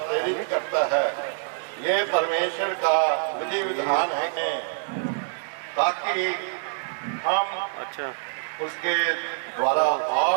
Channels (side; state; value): left; silent; digital silence